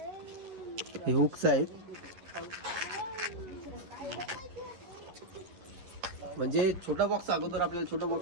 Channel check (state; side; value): late; left; 11 ms